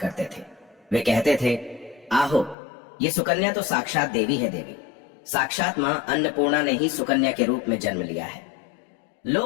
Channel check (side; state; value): right; drops out; at 2.6 s